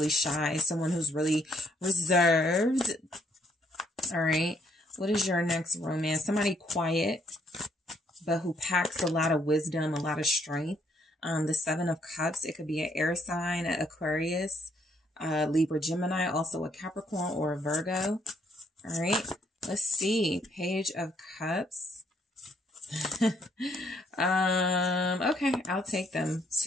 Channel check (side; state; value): both; normal; correlation 0.69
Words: shy, someone who's really reserved. All right, what is your next romance? Somebody quiet, but who packs a lot of wisdom, a lot of strength. The Seven of Cups, it could be an air sign, an Aquarius, Libra, Gemini, also a Capricorn or a Virgo. All right, let's see. Page of Cups. Okay, I'll take them.